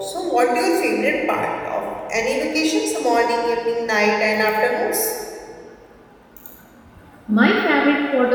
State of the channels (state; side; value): identical; both; correlation 1.00